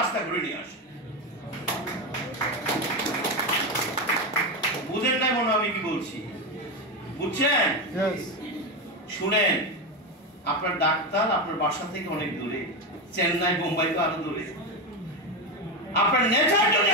ঘুরে নিয়ে আসে। বুঝেন না মনে আমি কি বলছি? বুঝছেন? শুনেন, আপনার ডাক্তার আপনার বাসা থেকে অনেক দূরে, চেন্নাই, বোম্বাই তো আরো দূরে। আপনার নেচার যদি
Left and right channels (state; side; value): normal; both; correlation 0.14